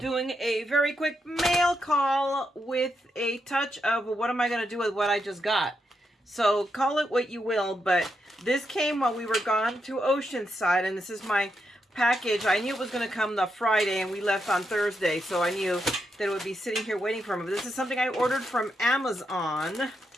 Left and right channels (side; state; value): both; normal; correlation 0.83